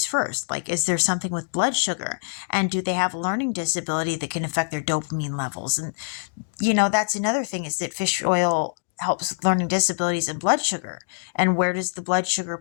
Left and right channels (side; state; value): right; silent; digital silence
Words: first. Like, is there something with blood sugar? And do they have a learning disability that can affect their dopamine levels? And, that's another thing, is that fish oil helps with learning disabilities and blood sugar. And where does the blood sugar